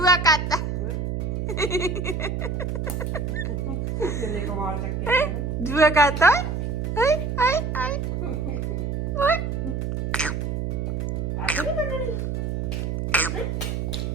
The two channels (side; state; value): right; noise; hum, 2 dB below the sound